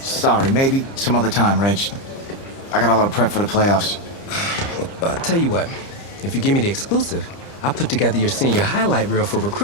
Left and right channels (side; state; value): right; late; 30 ms